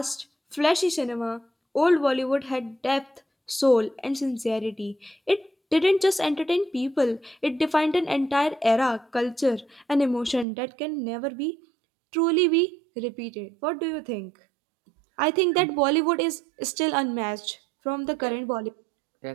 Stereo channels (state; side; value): drops out; left; at 10.5 s